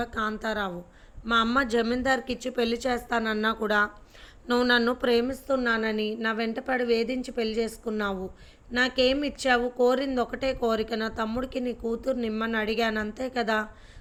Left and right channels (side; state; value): both; identical; correlation 1.00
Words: కాంతారావు. మా అమ్మ జమీందార్కి ఇచ్చి పెళ్లి చేస్తానన్నా కూడా నువ్వు నన్ను ప్రేమిస్తున్నానని నా వెంటపడి వేధించి పెళ్లి చేసుకున్నావు. నాకేం ఇచ్చావు? కోరింది ఒకటే కోరిక, నా తమ్ముడికి నీ కూతురు నిమ్మని అడిగాను, అంతే కదా